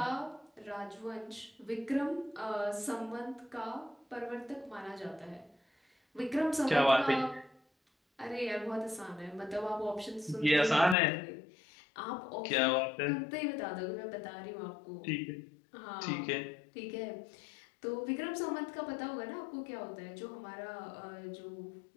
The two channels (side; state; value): right; drops out; at 11.0 s